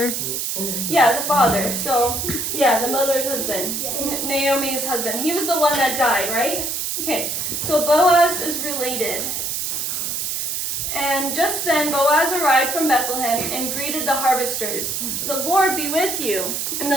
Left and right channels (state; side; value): noise; right; hiss, 2 dB below the sound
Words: Yeah, the father. So, yeah, the mother's husband. Naomi's husband. He was the one that died, right? Okay, so Boaz is related. And just then Boaz arrived from Bethlehem and greeted the harvesters. "The Lord be with you, and